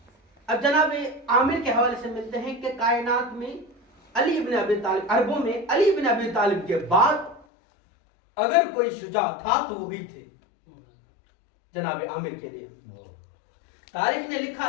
اب جناب عامر کے حوالے سے ملتے ہیں کہ کائنات میں علی بن ابی طالب، عربوں میں علی بن ابی طالب کے بعد اگر کوئی شجاع تھا تو وہی تھے جناب عامر کے لیے۔ تاریخ نے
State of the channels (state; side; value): drops out; right; at 7.5 s